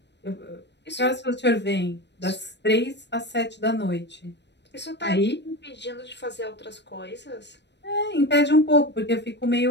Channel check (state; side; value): late; right; 0.50 ms